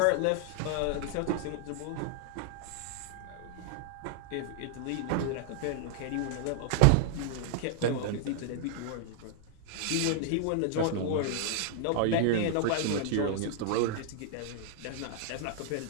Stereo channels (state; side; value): different; both; correlation 0.00